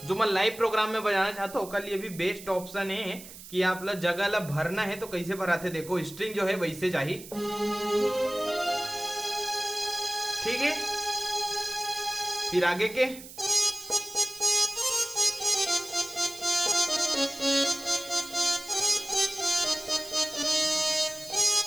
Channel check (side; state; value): right; noise; hiss, 15 dB below the sound